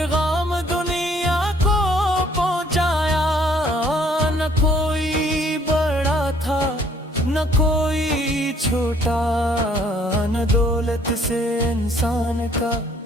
دنیا کو پہنچایا۔ نہ کوئی بڑا تھا نہ کوئی چھوٹا، نہ دولت سے انسان کا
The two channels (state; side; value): normal; both; correlation 0.61